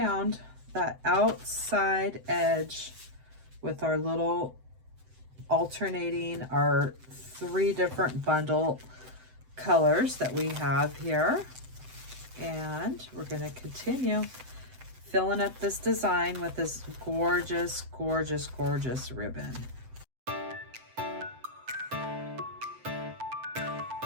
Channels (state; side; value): late; left; 7.8 ms